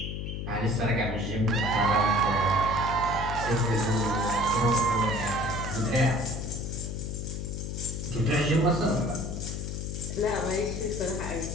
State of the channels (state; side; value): noise; left; hum, 4 dB below the sound